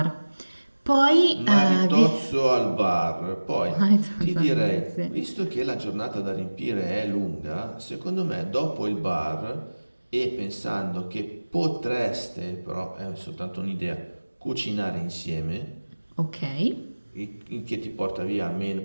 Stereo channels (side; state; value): both; inverted; correlation -1.00